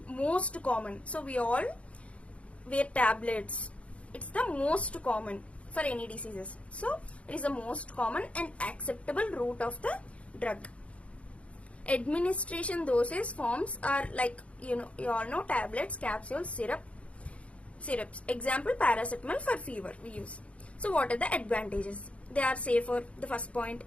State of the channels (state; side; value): late; right; 0.063 ms